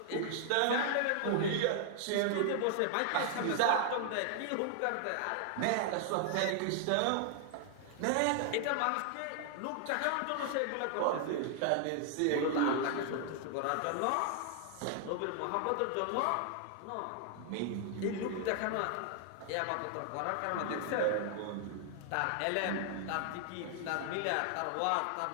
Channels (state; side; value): different; both; correlation 0.00